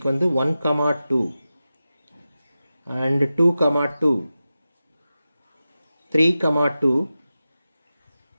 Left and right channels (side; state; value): both; inverted; correlation -0.93